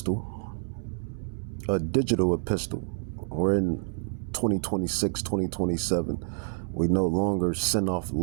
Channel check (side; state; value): left; silent; 59 dB below the other